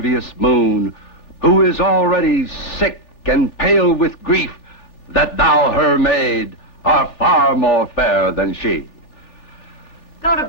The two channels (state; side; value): late; right; 3.4 ms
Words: moon, who is already sick and pale with grief that thou, her maid, art far more fair than she. Go to